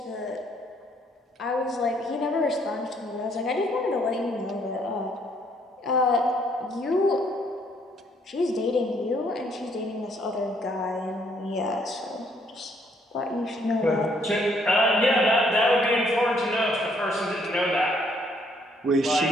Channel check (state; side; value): normal; both; correlation 0.68